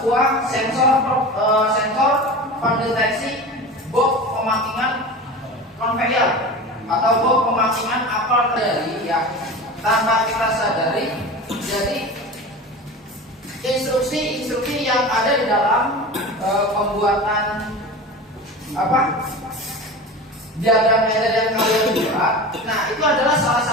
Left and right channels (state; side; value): normal; both; correlation 0.31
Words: sensor pendeteksi box pemakingan konveyor atau box pemakingan apel dari ya tanpa kita sadari. Jadi instruksi yang ada di dalam pembuatan diagram ladder yang kalian buat. Nah, itu adalah salah